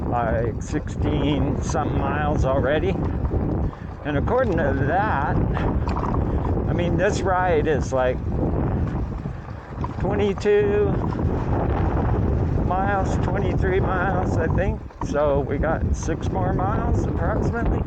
like 16 something miles already. And according to that, I mean, this ride is like 22 miles, 23 miles, I think. So we got 6 more miles approximately.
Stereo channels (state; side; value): identical; both; correlation 1.00